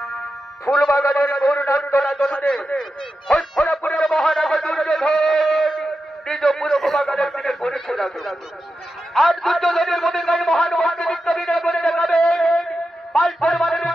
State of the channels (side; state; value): both; normal; correlation 0.90